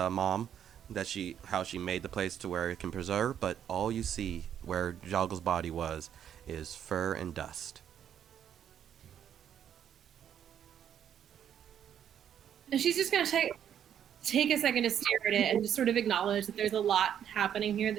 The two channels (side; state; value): left; quieter; 9.4 dB